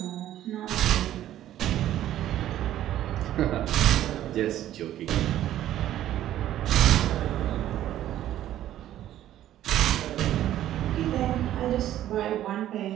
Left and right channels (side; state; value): left; quieter; 12.6 dB